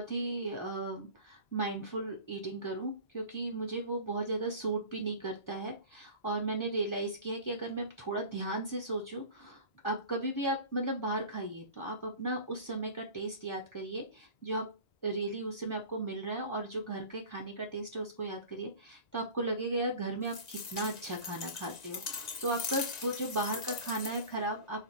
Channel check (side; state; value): right; late; 1.9 ms